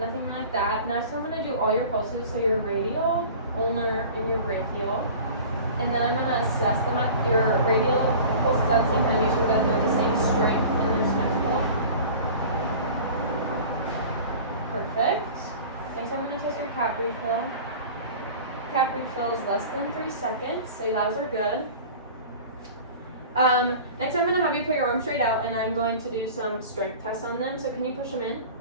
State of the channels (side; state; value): both; inverted; correlation -0.40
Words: like that. Next, I'm gonna do all your pulses, so your radial, ulnar, and your brachial. And then I'm gonna assess them at your radial pulses at the same time, make sure that they're the same strength and they're symmetrical. Perfect. Next, I'm gonna test your cap refill. Cap refill is less than 3 seconds, so those are good. Next, I'm gonna have you put your arms straight out, and I'm going to do some strength tests on them. So can you push them in,